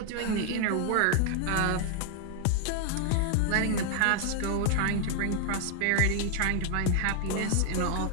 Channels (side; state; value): both; different; correlation 0.00